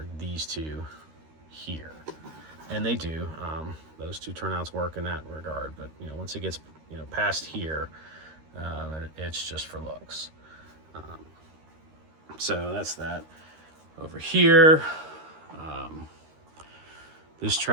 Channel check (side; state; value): left; late; 13 ms